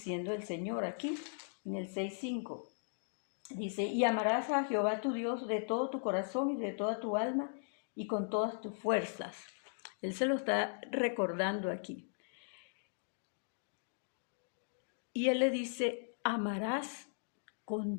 el Señor aquí, en el 6:5. Dice, y amarás a Jehová tu Dios de todo tu corazón y de toda tu alma y con todas tus fuerzas. Él se lo está recordando aquí. Y Él le dice, amarás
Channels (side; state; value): right; silent; digital silence